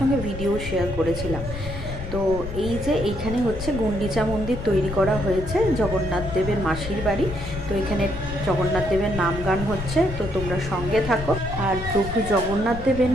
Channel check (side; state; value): left; noise; rumble, 9 dB below the sound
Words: ভিডিও শেয়ার করেছিলাম। তো এই যে এইখানে হচ্ছে গুন্ডিচা মন্দির তৈরি করা হয়েছে জগন্নাথ দেবের মাসির বাড়ি। তো এখানে জগন্নাথ দেবের নাম গান হচ্ছে, তো তোমরা সঙ্গে থাকো। আর প্রভু জগন্নাথ দেবের